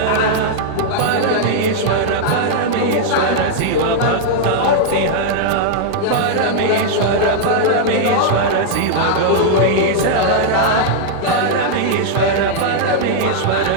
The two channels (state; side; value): different; both; correlation -0.01